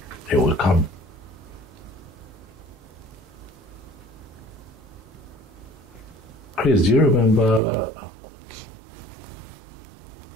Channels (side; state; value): left; drops out; at 7.6 s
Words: will come. Chris, do you remember